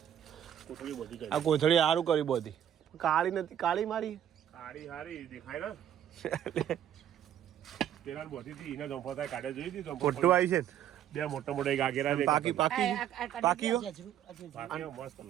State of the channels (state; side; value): quieter; left; 10.5 dB